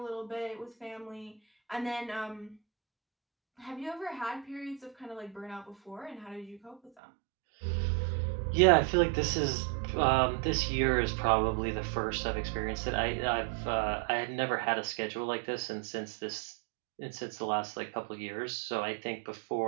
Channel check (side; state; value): left; drops out; at 6.9 s